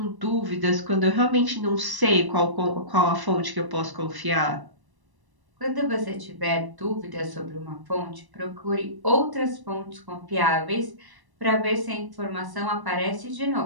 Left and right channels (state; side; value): late; left; 1.0 ms